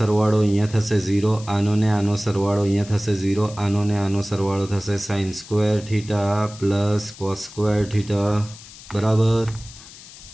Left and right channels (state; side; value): noise; left; hiss, 18 dB below the sound